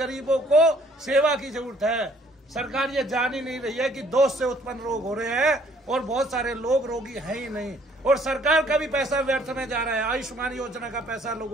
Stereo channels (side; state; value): both; normal; correlation 0.61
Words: को सेवा की जरूरत है। सरकार ये जान ही नहीं रही है कि दोष से उत्पन्न रोग हो रहे हैं और बहुत सारे लोग रोगी हैं ही नहीं, और सरकार का भी पैसा व्यर्थ में जा रहा है। आयुष्मान योजना का पैसा